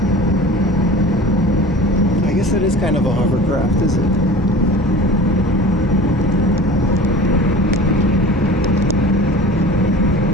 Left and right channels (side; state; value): both; normal; correlation 0.39